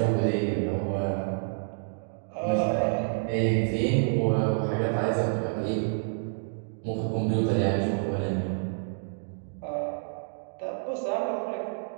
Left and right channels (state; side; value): silent; left; digital silence